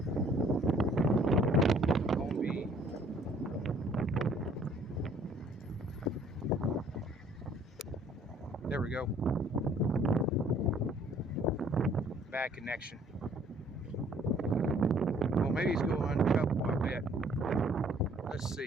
There we go. Bad connection. Well, maybe he's going uncoupled, I bet. Let's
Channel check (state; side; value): normal; both; correlation 0.59